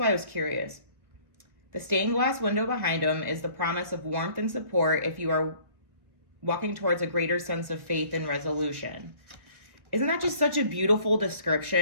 I was curious. The stained glass window behind him is the promise of warmth and support if you are walking towards a greater sense of faith and resolution. Isn't that just such a beautiful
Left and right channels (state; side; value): late; left; 1.2 ms